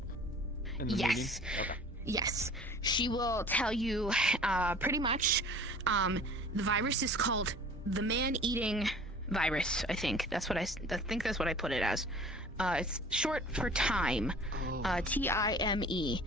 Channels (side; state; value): both; normal; correlation 0.45